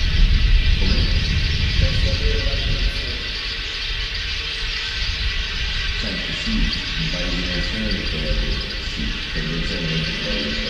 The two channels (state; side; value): identical; both; correlation 1.00